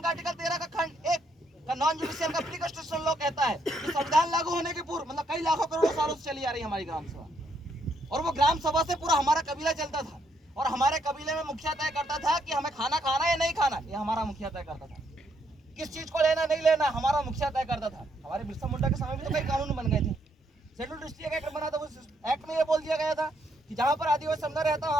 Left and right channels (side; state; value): both; normal; correlation 0.74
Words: का आर्टिकल 13 का खंड 1 का नॉन जुडिशियल का प्री कॉन्स्टिट्यूशन लॉ कहता है कि संविधान लागू होने के पूर्व मतलब कई लाखों करोड़ों सालों से चली आ रही है हमारी ग्राम सभा, और वो ग्राम सभा से पूरा हमारा कबीला चलता था, और हमारे कबीले में मुखिया तय करता था कि हमें खाना खाना या नहीं खाना, ये हमारा मुखिया तय करता था। किस चीज को लेना नहीं लेना हमारा मुखिया तय करता था। हमारे बिरसा मुंडा के समय में तो कई कानून बन गए थे। शेड्यूल डिस्ट्रिक्ट एक्ट बना था, उस एक्ट में ये बोल दिया गया था कि जहाँ पर आदिवासी समुदाय रहता है